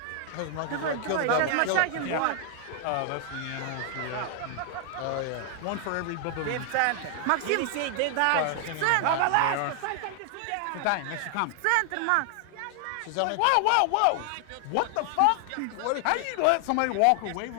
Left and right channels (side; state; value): both; different; correlation 0.00